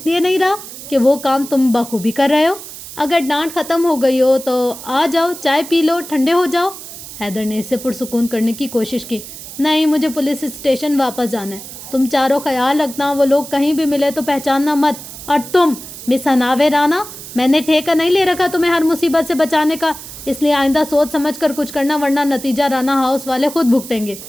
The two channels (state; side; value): noise; right; hiss, 13 dB below the sound